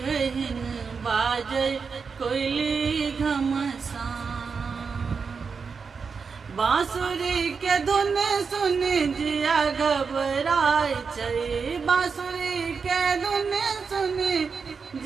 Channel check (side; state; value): left; quieter; 5.4 dB